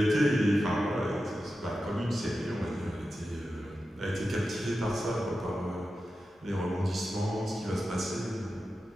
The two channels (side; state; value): both; normal; correlation 0.92